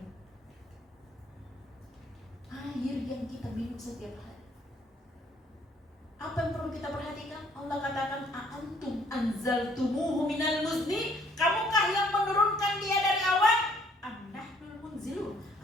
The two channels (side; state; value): both; normal; correlation 0.62